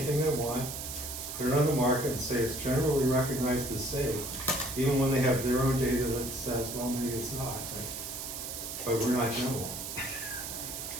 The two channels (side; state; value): right; noise; hiss, 7 dB below the sound